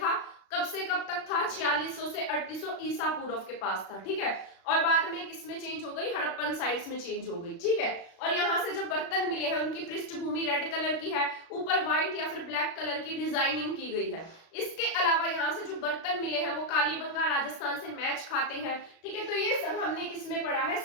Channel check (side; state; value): right; late; 36 ms